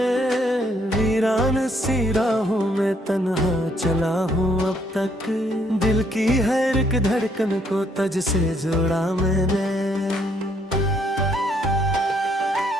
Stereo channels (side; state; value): both; normal; correlation 0.69